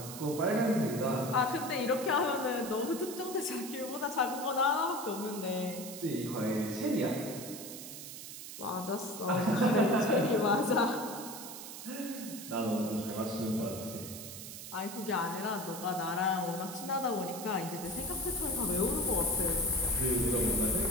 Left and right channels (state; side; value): noise; right; hiss, 10 dB below the sound